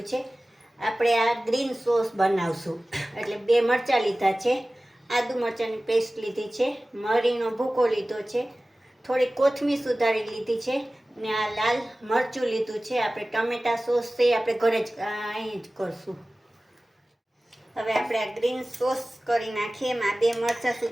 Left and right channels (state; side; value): normal; both; correlation 0.97